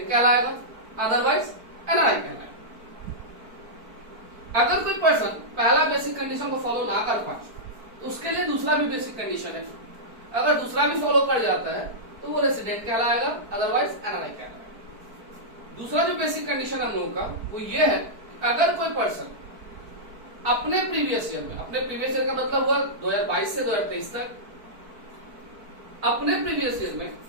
कहलाएगा, अदरवाइज एनआरआई कहलाएगा। अगर कोई पर्सन पहला बेसिक कंडीशन को फॉलो ना कर पाए तो उसके लिए दूसरा भी बेसिक कंडीशन है। अगर दूसरा भी फॉलो कर जाता है तो वो रेसिडेंट कहलाएगा, अदरवाइज एनआरआई कहलाएगा। दूसरा जो बेसिक कंडीशन हम लोगों का वो ये है, अगर कोई पर्सन अपने प्रीवियस ईयर में, अपने प्रीवियस ईयर का मतलब हुआ 2022 से 2023 तक, अपने प्रीवियस ईयर में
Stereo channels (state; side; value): late; left; 4.5 ms